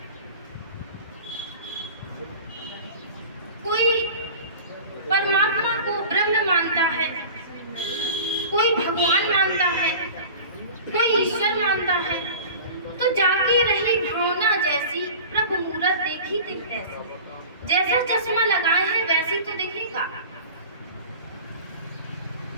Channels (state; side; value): inverted; both; correlation -0.38